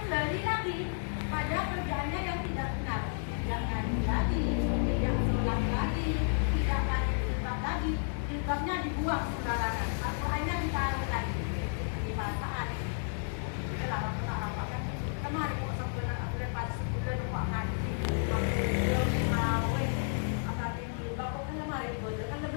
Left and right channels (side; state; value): right; silent; digital silence